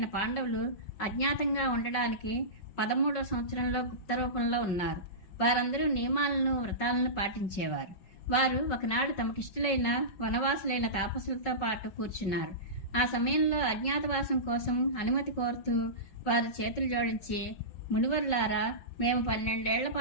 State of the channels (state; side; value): late; right; 5.3 ms